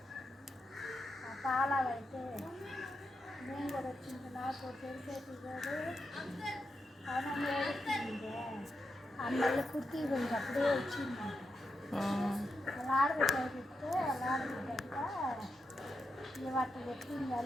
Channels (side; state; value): both; normal; correlation 0.85